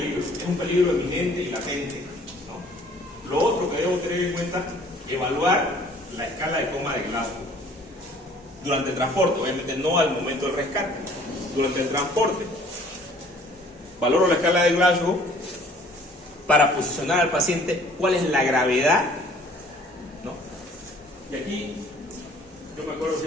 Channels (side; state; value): both; normal; correlation 0.55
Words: es un peligro eminente y latente, ¿no? Lo otro que debo tener en cuenta, evaluar la escala de coma de Glasgow. Durante el transporte, obviamente no al momento del rescate, durante el transporte. Valoro la escala de Glasgow para posicionar al paciente cuál es la gravedad, ¿no? Y aquí yo me acuerdo